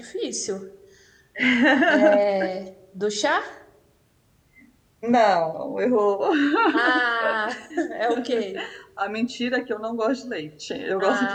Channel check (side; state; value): both; identical; correlation 1.00